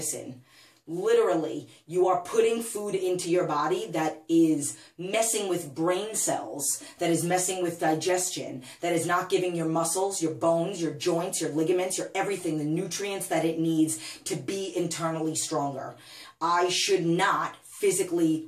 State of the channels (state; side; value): identical; both; correlation 1.00